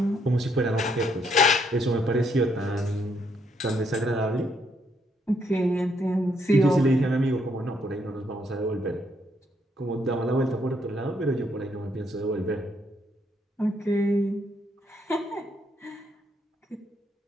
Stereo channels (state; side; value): normal; both; correlation 0.72